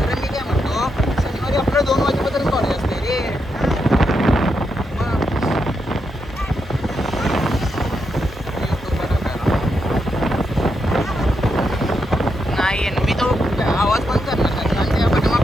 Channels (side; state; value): both; normal; correlation 0.83